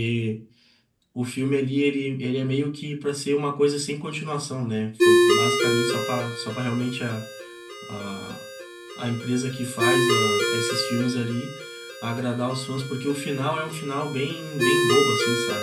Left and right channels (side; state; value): both; identical; correlation 1.00